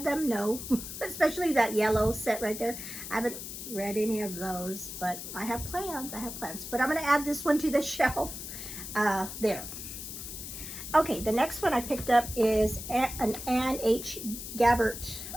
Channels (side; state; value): left; noise; hiss, 9 dB below the sound